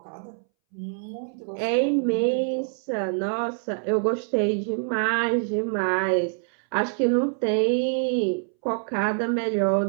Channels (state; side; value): silent; left; 61 dB below the other